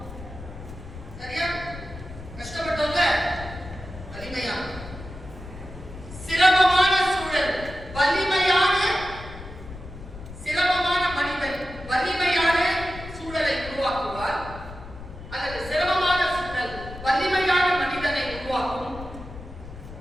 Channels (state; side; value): noise; left; rumble, 13 dB below the sound